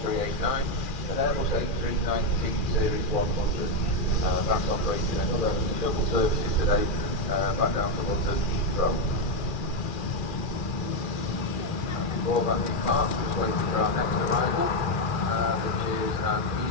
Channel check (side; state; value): right; late; 2.4 ms